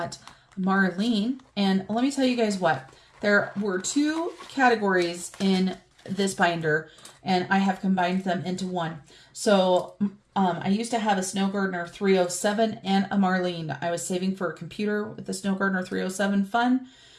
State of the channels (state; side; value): identical; both; correlation 1.00